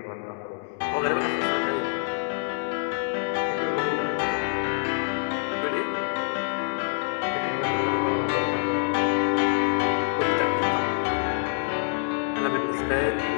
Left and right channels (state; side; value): silent; right; 59 dB below the other